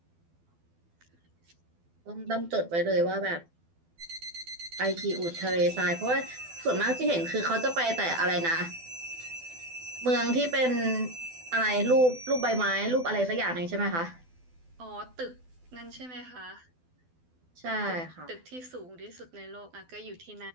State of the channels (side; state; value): left; late; 12 ms